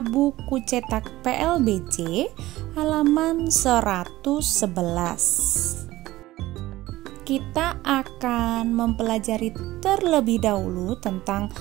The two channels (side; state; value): left; quieter; 16.8 dB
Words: buku cetak PLBJ halaman 111. Kita akan mempelajari terlebih dahulu tentang